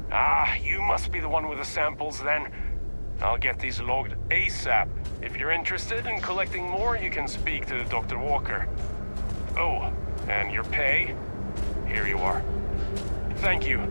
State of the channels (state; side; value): inverted; both; correlation -1.00